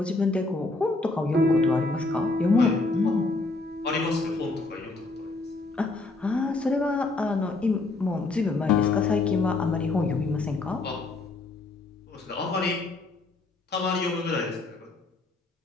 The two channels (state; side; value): quieter; right; 3.3 dB